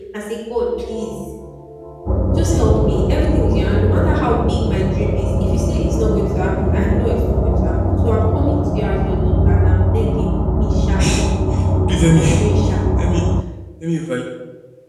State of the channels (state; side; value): identical; both; correlation 1.00